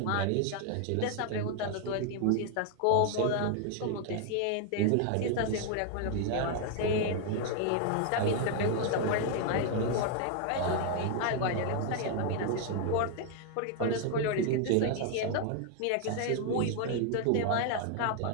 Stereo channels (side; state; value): both; different; correlation 0.00